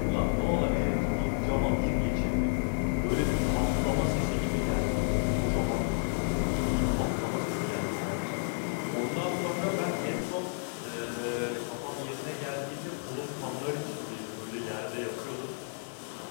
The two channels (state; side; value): silent; right; digital silence